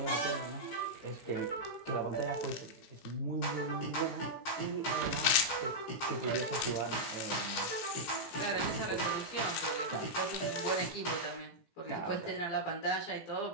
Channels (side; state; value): right; late; 18 ms